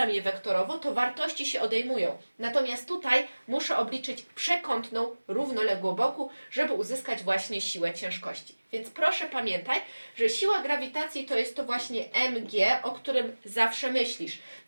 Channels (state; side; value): inverted; both; correlation -1.00